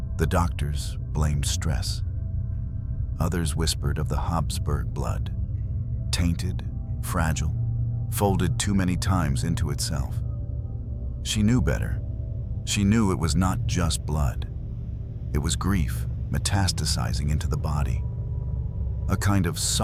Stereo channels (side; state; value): both; identical; correlation 1.00